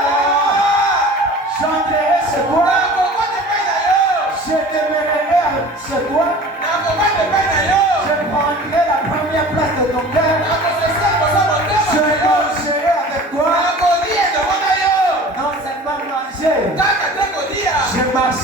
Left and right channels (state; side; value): normal; both; correlation 0.42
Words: J'entrerai chez toi. Je demeurerai chez toi. Je prendrai la première place de ton cœur. Je mangerai avec toi. Non seulement manger, je